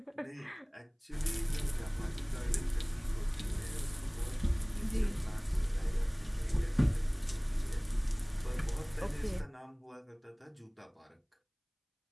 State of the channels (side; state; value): both; identical; correlation 1.00